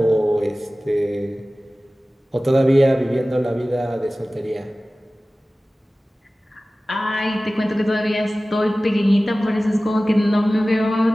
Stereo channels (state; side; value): normal; both; correlation 0.97